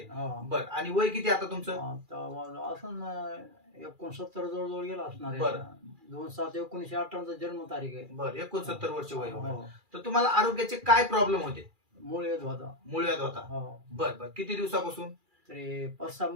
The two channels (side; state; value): left; late; 2.4 ms